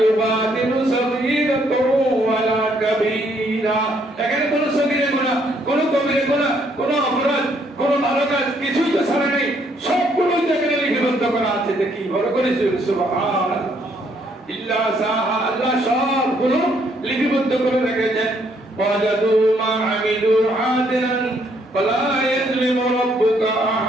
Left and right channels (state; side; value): normal; both; correlation 0.69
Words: ইউবাদিলু সগীরাতাও ওয়ালা কাবীরা, এখানে কোনো সগীরা গুনাহ, কোনো কবিরা গুনাহ, কোনো অপরাধ, কোনো ভালো কাজ কিছুই তো ছাড়া নেই, সবগুলো এখানে লিপিবদ্ধ করা আছে। দেখি বড় করে সুবহানাল্লাহ, ইল্লা সাহা, আল্লাহ সবগুলো লিপিবদ্ধ করে রেখেছেন। ওয়াজাদু মা আমিলু হাদিরান ফালা ইয়াজলিমু রাব্বুকা